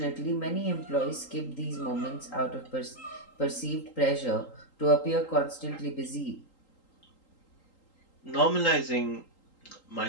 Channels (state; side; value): late; right; 3.8 ms